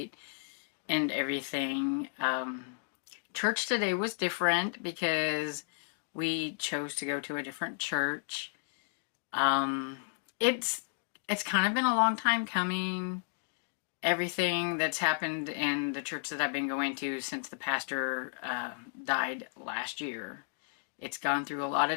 and everything. Church today was different because we chose to go to a different church. Um, it's it's kind of been a long time coming. Everything that's happened in the church that I've been going to since the pastor died last year. It's gone through a lot of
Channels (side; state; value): right; silent; digital silence